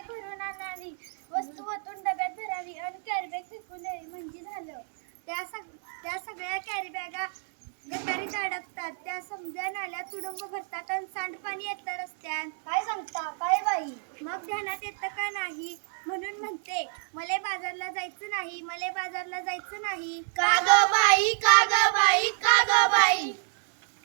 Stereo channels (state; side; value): silent; left; 58 dB below the other